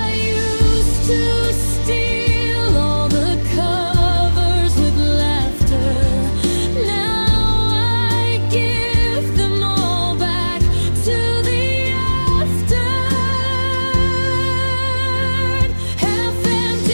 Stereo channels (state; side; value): inverted; both; correlation -1.00